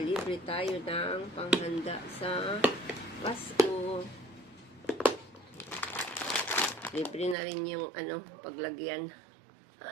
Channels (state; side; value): drops out; left; at 7.4 s